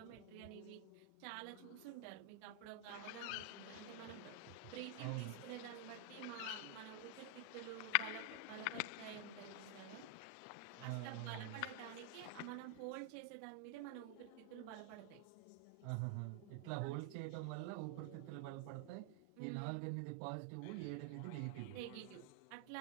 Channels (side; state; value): both; different; correlation 0.00